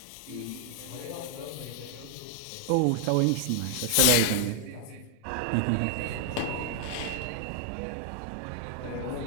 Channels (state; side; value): different; both; correlation 0.00